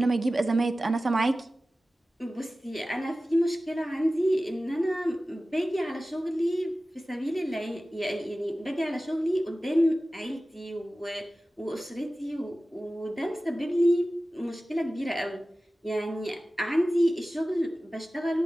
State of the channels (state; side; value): normal; both; correlation 0.96